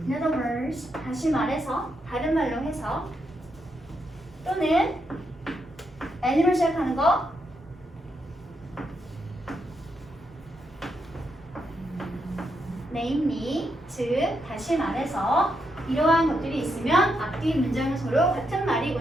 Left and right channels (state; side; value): normal; both; correlation 0.81